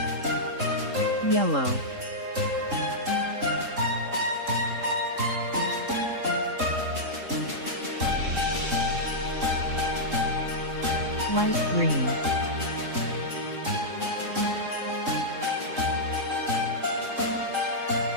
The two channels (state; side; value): late; left; 3.7 ms